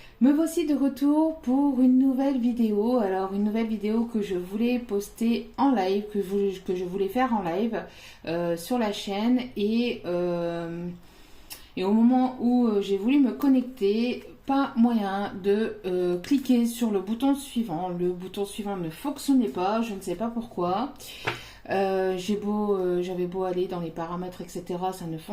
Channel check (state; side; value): identical; both; correlation 1.00